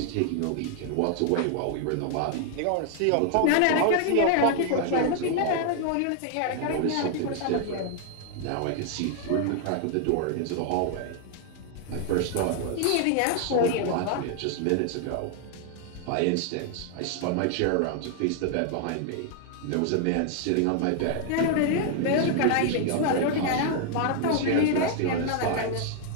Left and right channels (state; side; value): different; both; correlation 0.00